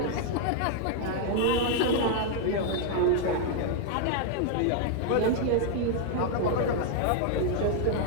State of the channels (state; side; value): different; both; correlation 0.00